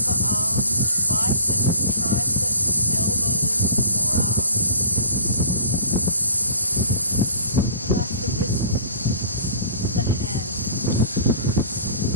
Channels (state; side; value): inverted; both; correlation -0.45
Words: arms, biceps and triceps, elbows and forearms. Relax the wrists, the hands.